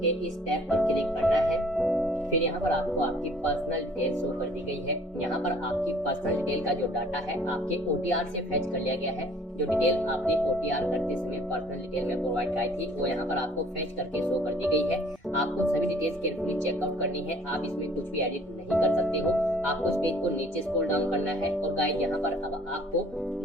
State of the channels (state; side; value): normal; both; correlation 0.55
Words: के इस टैब पर क्लिक करना है। फिर यहाँ पर आपको आपकी पर्सनल डिटेल शो कर दी गई है। यहाँ पर आपकी पर्सनल डिटेल का जो डाटा है आपके OTR से फेच कर लिया गया है। जो डिटेल आपने OTR करते समय पर्सनल डिटेल में प्रोवाइड कराई थी वो यहाँ पर आपको फेच करके शो कर दी गई है। आपको सभी डिटेल्स केयरफुली चेकआउट करनी है। आप इसमें कुछ भी एडिट नहीं कर सकते हो। आपको इस पेज को नीचे स्क्रॉल डाउन करना है, और गाइड यहाँ पर अब आपको